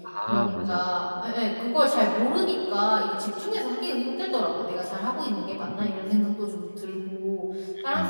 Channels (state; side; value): inverted; both; correlation -1.00